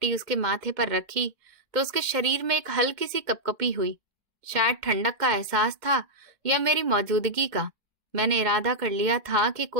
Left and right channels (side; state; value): left; late; 2.1 ms